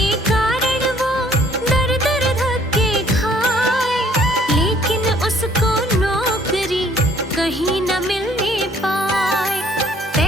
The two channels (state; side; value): normal; both; correlation 0.60